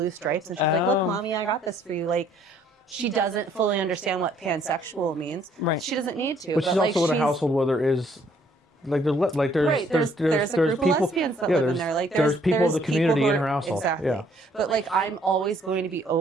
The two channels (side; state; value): both; normal; correlation 0.64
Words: stripes, and she's like, "Look, Mommy, I got this for you." She doesn't fully understand what pansexual means. Right. She doesn't need to. But she's also in a household where there is. There's a group people, of lesbians that live in there. There's people of the community in her household. Exactly. Yeah. But I'm always going to be